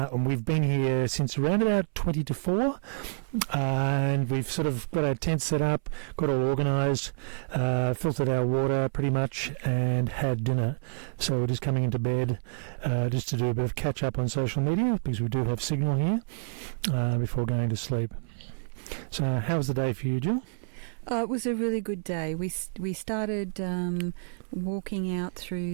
we've been here since around about 20 to 4, and we've sort of got our tent set up, got all organised, filtered our water pretty much, and had dinner. So we're just coming into bed just to do a bit of catch up on social media, because we do have signal here, before going to sleep. So how was the day for you, Jill? It was a really good day. We started walking out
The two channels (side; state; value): left; silent; 59 dB below the other